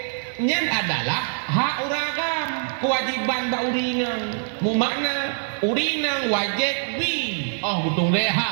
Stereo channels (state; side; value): silent; left; 63 dB below the other